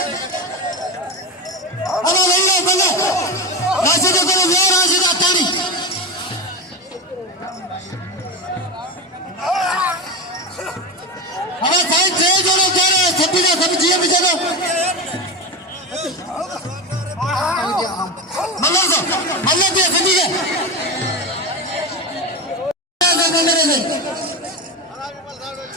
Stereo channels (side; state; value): both; normal; correlation 0.20